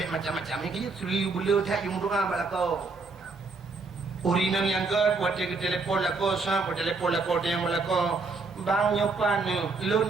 macam-macamnya kaya suri bulu tak yung doa balako. Urinang yang ke buat dia telefon lako, sah buat telefon lako dia yang balako. Bang nyopan ni, lun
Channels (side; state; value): left; quieter; 3.9 dB